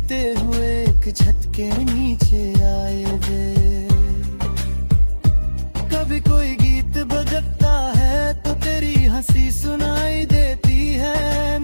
हुए एक छत के नीचे आए थे। कभी कोई गीत बजता है तो तेरी हंसी सुनाई देती है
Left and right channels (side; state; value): both; inverted; correlation -1.00